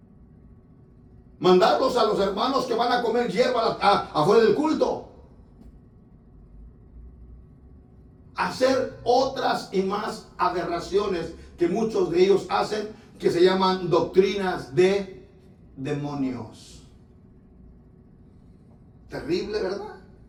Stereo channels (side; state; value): both; identical; correlation 1.00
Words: Mandarlos a los hermanos que van a comer hierba afuera del culto. Hacer otras y más aberraciones que muchos de ellos hacen, que se llaman doctrinas de demonios. Terrible, ¿verdad?